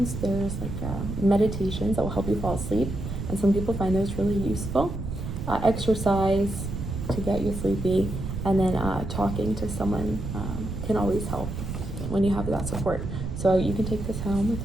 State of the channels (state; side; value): noise; right; rumble, 5 dB below the sound